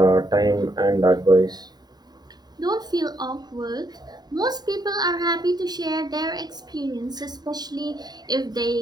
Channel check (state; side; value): late; left; 0.20 ms